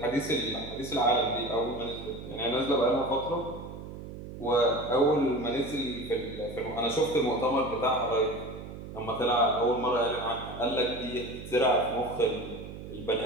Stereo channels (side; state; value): right; noise; hum, 11 dB below the sound